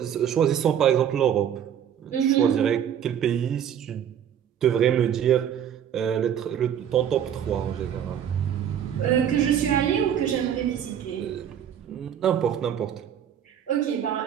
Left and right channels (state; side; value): quieter; left; 9.3 dB